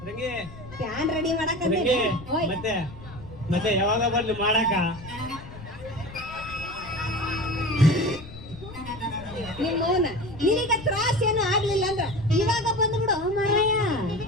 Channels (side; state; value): left; noise; rumble, 15 dB below the sound